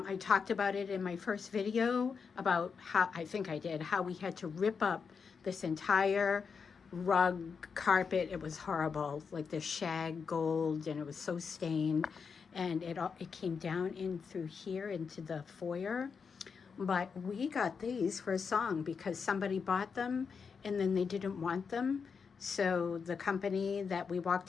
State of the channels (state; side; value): quieter; right; 5.8 dB